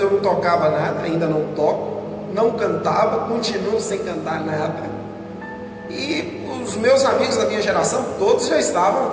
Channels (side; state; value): both; identical; correlation 1.00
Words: eu não tocava nada, ainda não toco, não cantava, continuo sem cantar nada. E os meus amigos da minha geração, todos já estavam